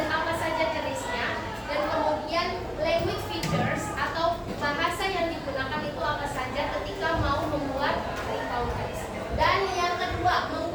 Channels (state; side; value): identical; both; correlation 1.00